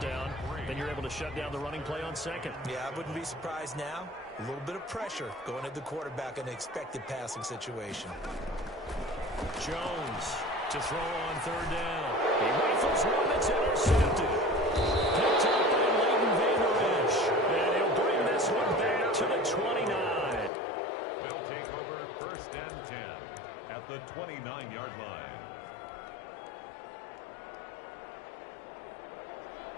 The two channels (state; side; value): drops out; right; at 20.5 s